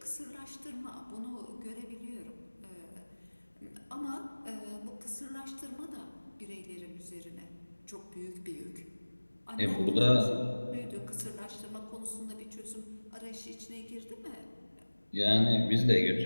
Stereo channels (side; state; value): both; inverted; correlation -1.00